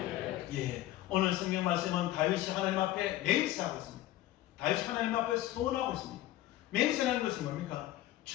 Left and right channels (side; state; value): right; quieter; 14.9 dB